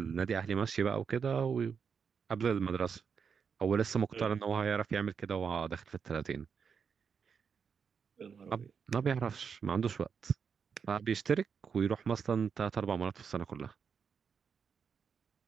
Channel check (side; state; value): left; quieter; 6.4 dB